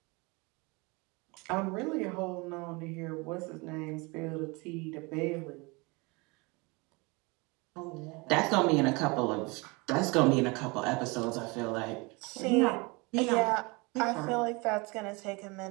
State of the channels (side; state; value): left; quieter; 27.2 dB